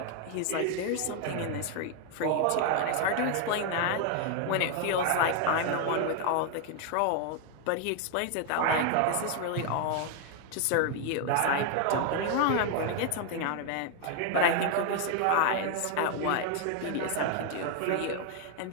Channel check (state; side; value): different; both; correlation 0.00